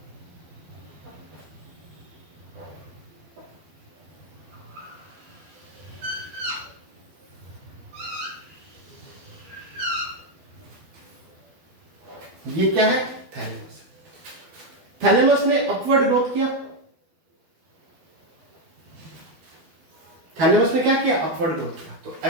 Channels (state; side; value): late; left; 12 ms